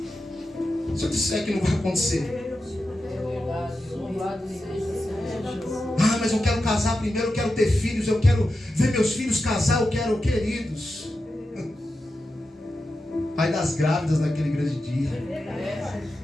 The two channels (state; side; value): normal; both; correlation 0.90